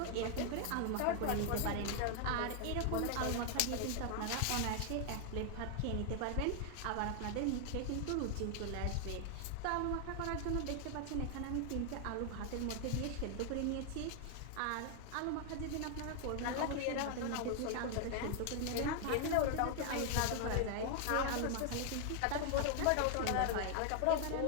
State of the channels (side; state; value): both; different; correlation 0.00